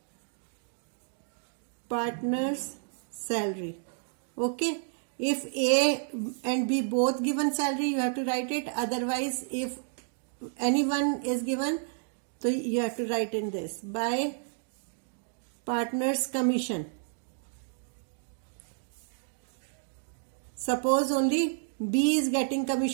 Partner's salary. Okay. If A and B both given salary, you have to write it. Otherwise, if anyone is given, so you have to write in this. By partner's commission. Suppose only B is getting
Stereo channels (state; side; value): silent; left; digital silence